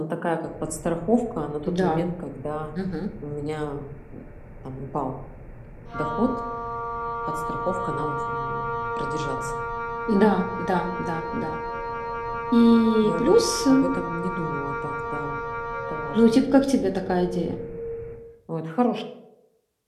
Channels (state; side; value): identical; both; correlation 1.00